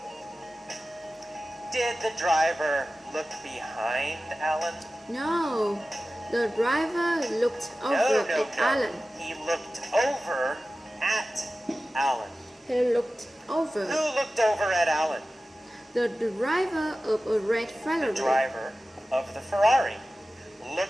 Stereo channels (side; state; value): both; normal; correlation 0.95